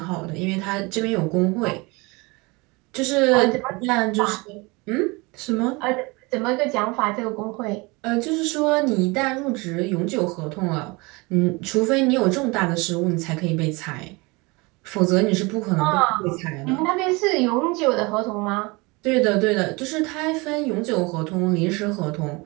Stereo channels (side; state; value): left; quieter; 25.8 dB